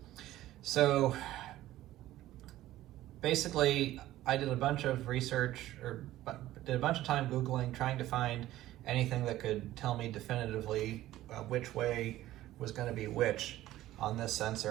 So basically, I did a bunch of research, or did a bunch of time Googling, trying to find anything that could tell me definitively which way was going to be which on this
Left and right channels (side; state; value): left; quieter; 14.9 dB